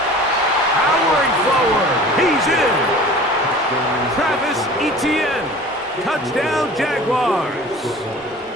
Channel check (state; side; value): normal; both; correlation 0.43